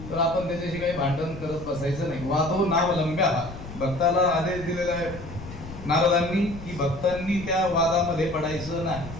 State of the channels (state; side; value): noise; left; rumble, 13 dB below the sound